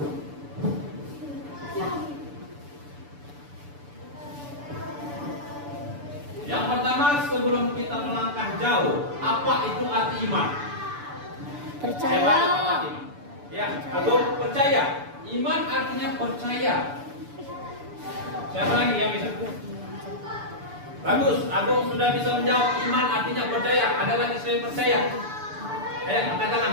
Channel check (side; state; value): left; late; 6.9 ms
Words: Yang pertama, sebelum kita melangkah jauh, apa itu arti iman? Percaya. Siapa tahu apa arti iman? Ya, atau percaya. Iman artinya percaya. Siapa lagi yang bisa? Bagus, Agung sudah bisa menjawab. Iman artinya percaya. Ada lagi selain percaya? Angkat